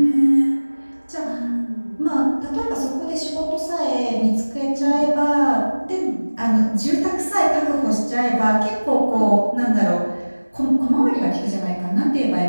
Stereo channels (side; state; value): both; inverted; correlation -1.00